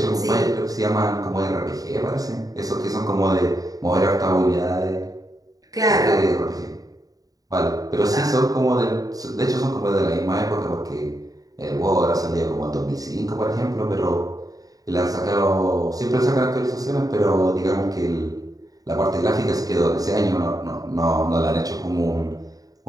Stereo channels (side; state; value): left; late; 0.18 ms